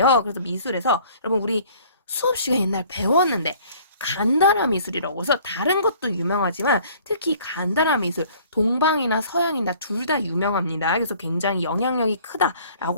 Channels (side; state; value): both; inverted; correlation -0.54